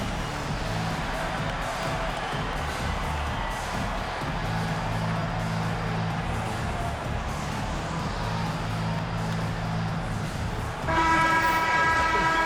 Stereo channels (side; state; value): both; identical; correlation 1.00